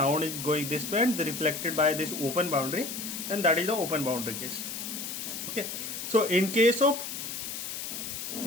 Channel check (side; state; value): left; noise; hiss, 6 dB below the sound